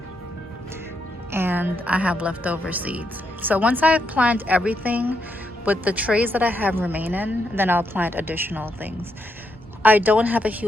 and I have leftover seeds. So once I plant everything with the trays that I have remaining, then I'll plant additional things. I don't have a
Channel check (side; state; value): both; normal; correlation 0.80